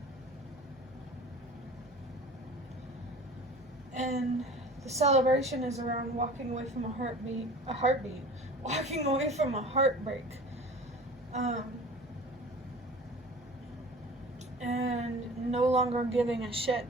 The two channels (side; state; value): right; noise; hum, 26 dB below the sound